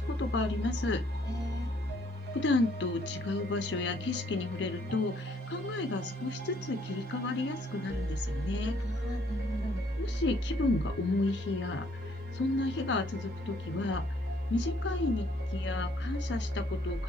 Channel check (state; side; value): normal; both; correlation 0.65